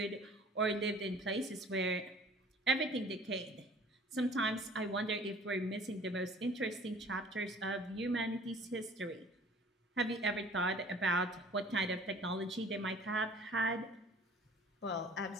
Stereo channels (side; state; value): both; normal; correlation 0.50